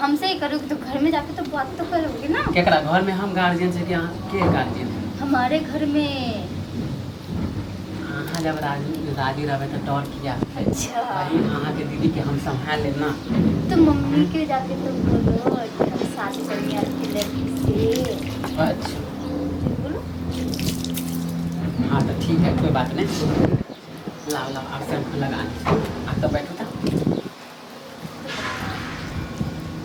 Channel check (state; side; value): identical; both; correlation 1.00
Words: ही करोगे तो घर में जाके तो बात तो करोगे ना। केकरा घर में हम गार्जियन से क्या के गार्जियन? हमारे घर में हाँ जब राजी रहे तो डर किया। अच्छा भाई अहाँ के दीदी के हम संभाल लेना। तो मम्मी के जाके तो बोलो कि हम शादी करेंगे आपकी लड़की से। अच्छा बोलो। हाँ तो ठीक है, कोई बात नहीं। लाओ लाओ आप सब लगा आप तो बैठो था।